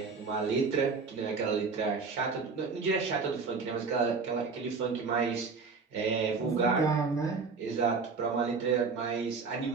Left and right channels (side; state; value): left; quieter; 4.8 dB